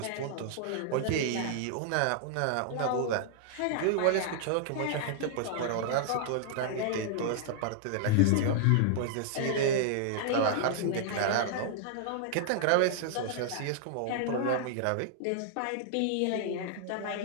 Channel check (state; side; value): different; both; correlation -0.01